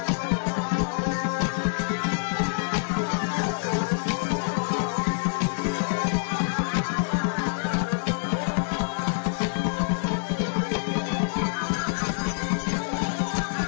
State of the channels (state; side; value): silent; right; digital silence